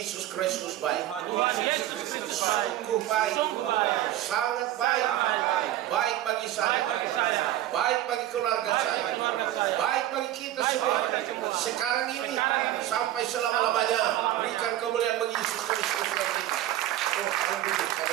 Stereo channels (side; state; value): left; quieter; 13.5 dB